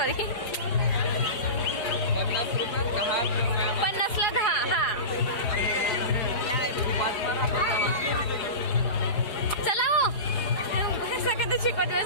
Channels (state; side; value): late; right; 4.9 ms